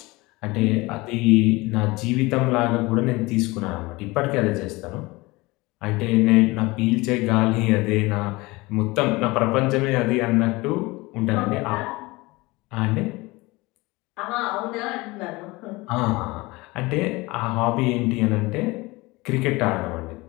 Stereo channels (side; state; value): right; quieter; 22.5 dB